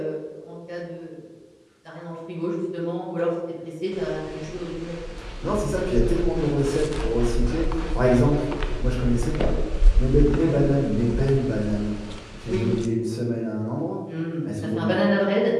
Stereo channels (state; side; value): identical; both; correlation 1.00